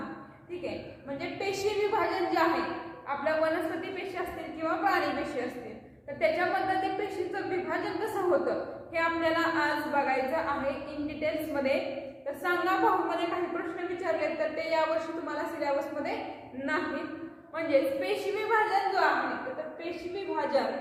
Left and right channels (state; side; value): identical; both; correlation 1.00